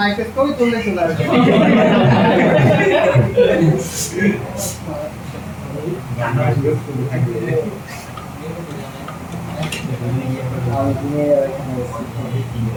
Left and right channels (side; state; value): both; identical; correlation 1.00